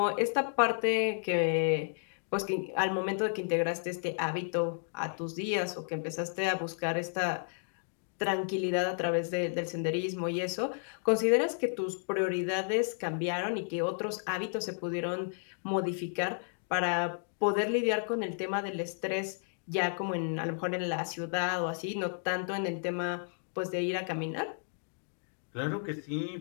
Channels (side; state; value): right; silent; digital silence